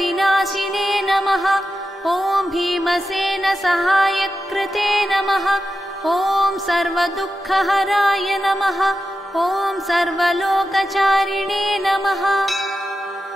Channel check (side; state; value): both; normal; correlation 0.90